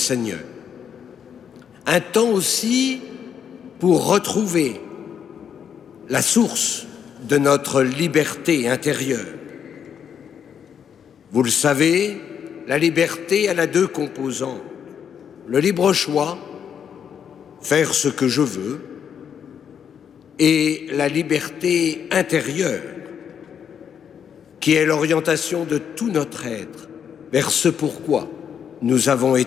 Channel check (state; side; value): quieter; right; 8.0 dB